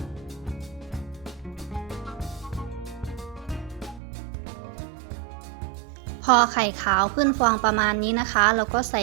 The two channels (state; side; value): drops out; left; at 4.0 s